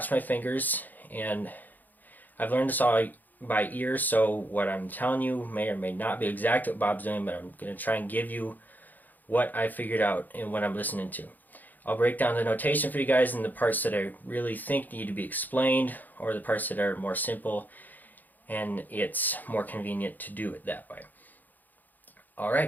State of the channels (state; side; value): late; right; 0.085 ms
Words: my fingers, and I've learned this all by ear, so what I'm telling you may or may not be exact what Bob's doing, but I'm going to try and give you what I figured out and what I'm listening to. I'll break down the notation for you guys and the parts that I really think need to be explained, or the parts that are more simple and it's more convenient to do it that way.